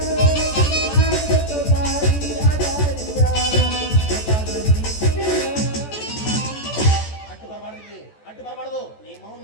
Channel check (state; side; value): late; right; 14 ms